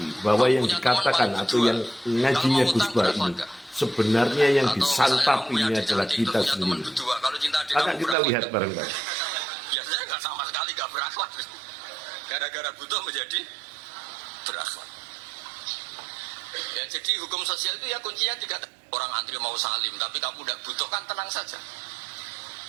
bahwa yang dikatakan atau yang ngajinya Gus Wahab ini sebenarnya yang disantapinya adalah kita sendiri. Akan kita lihat bareng-bareng. Biasanya nggak sama sekali nggak berakhlak. Gara-gara butuh menjadi berakhlak. Ya, jadi hukum sosial itu ya kuncinya tiga. Orang antri mau salim, tapi kamu udah butuh kan tenang saja.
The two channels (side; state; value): left; drops out; at 8.2 s